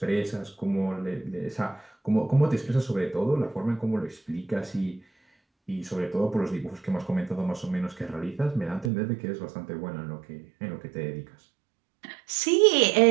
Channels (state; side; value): drops out; left; at 8.9 s